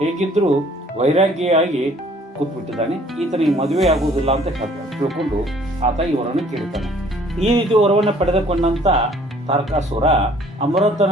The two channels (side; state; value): both; normal; correlation 0.57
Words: ಹೇಗಿದ್ರೂ ವೈರಾಗ್ಯಿಯಾಗಿ ಕೂತ್ಬಿಟ್ಟಿದ್ದಾನೆ, ಈತನಿಗೆ ಮದುವೆ ಆಗುವುದಿಲ್ಲ ಅಂತ ತಿಳ್ಕೊಂಡು ಆತ ಈ ವರವನ್ನು ಕೇಳ್ತಾನೆ. ಈ ರೀತಿ ವರವನ್ನು ಪಡೆದುಕೊಂಡಂತ ತಾರಕಾಸುರ ಅಮೃತನ